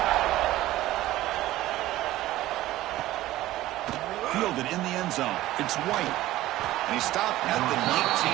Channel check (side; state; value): left; quieter; 15.8 dB